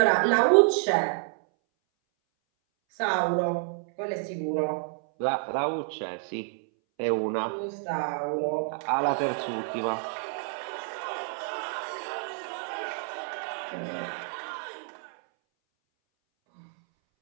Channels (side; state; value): left; silent; 59 dB below the other